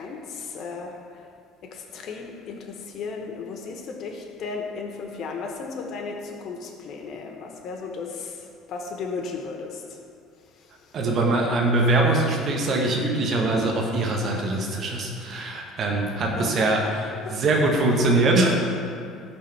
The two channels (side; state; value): both; normal; correlation 0.40